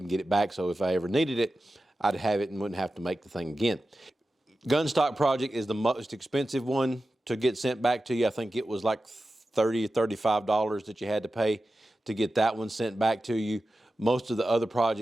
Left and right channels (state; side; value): normal; both; correlation 0.93